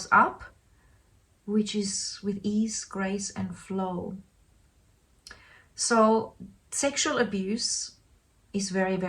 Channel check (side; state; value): both; identical; correlation 1.00